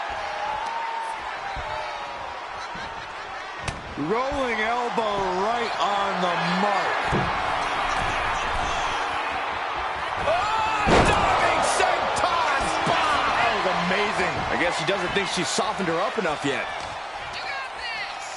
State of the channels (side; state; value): both; identical; correlation 1.00